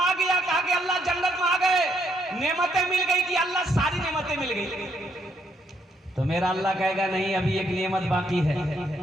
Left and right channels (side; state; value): both; normal; correlation 0.73